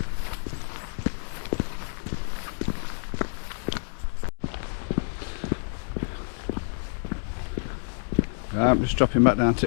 I'm just dropping back down to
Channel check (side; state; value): right; silent; 59 dB below the other